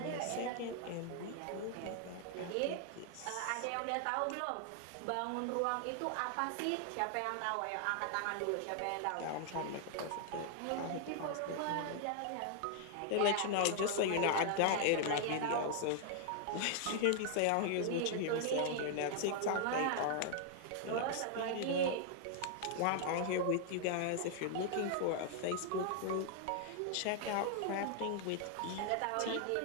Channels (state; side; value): different; both; correlation 0.00